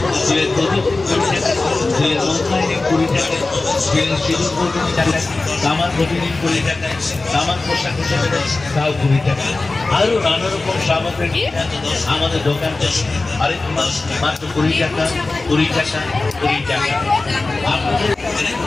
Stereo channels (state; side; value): quieter; right; 3.4 dB